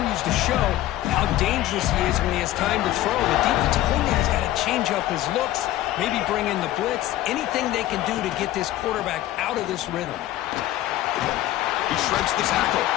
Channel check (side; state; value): right; quieter; 14.6 dB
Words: to show how dangerous he is when he has time to throw. The defensive coordinator's got to change up his looks, maybe bring in the blitz, anything they can do to get this quarterback out of this rhythm. He shreds the tackle.